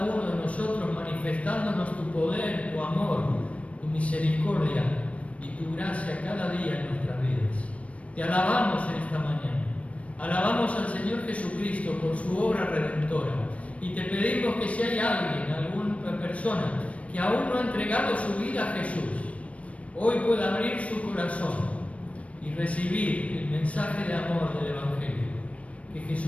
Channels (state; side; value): late; right; 0.064 ms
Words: uno de nosotros, manifestándonos tu poder, tu amor, tu misericordia y tu gracia cada día en nuestras vidas. Te alabamos en esta mañana. Alabamos al Señor Jesucristo por su obra redentora. Y te pedimos que si hay alguien, alguna persona que aún no ha entregado su vida a Jesús, hoy pueda abrir su corazón y recibir el mensaje de amor del Evangelio, que